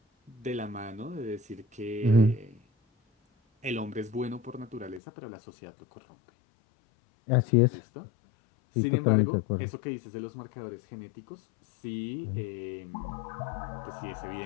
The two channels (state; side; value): drops out; right; at 5.0 s